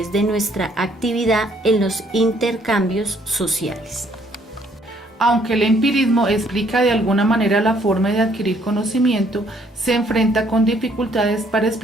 de nuestra actividad en los intercambios sociales. Aunque el empirismo explica de alguna manera la forma de adquirir conocimiento, se enfrenta con dificultades para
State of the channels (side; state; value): both; normal; correlation 0.65